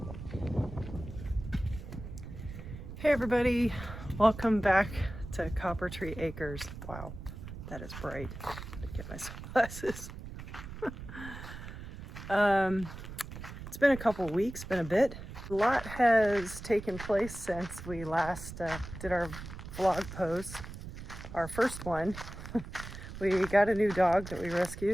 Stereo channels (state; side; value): noise; right; rumble, 11 dB below the sound